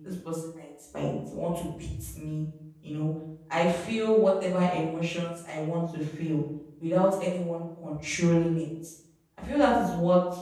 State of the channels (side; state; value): both; identical; correlation 1.00